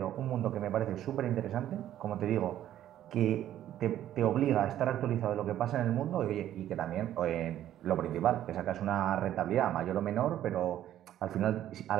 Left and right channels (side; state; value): left; quieter; 12.0 dB